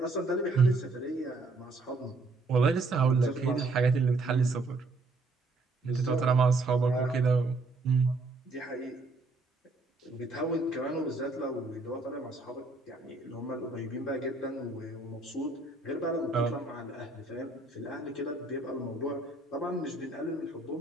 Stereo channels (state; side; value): quieter; left; 3.3 dB